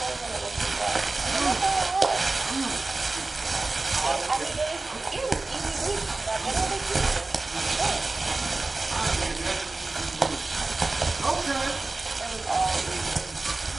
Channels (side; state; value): left; quieter; 3.3 dB